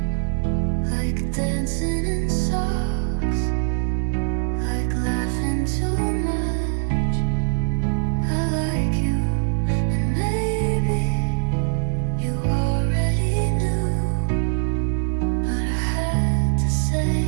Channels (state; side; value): silent; left; 64 dB below the other